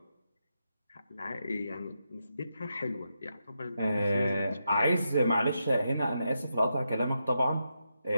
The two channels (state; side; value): inverted; both; correlation -0.85